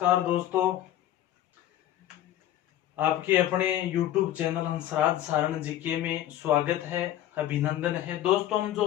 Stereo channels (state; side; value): quieter; right; 12.6 dB